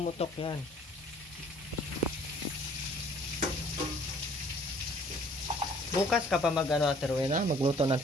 yan. Bukas ka pa mag-ano, Ate Rowena, magluto ng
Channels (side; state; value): both; normal; correlation 0.56